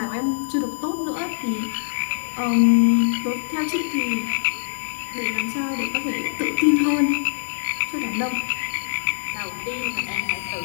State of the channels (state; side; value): silent; right; 63 dB below the other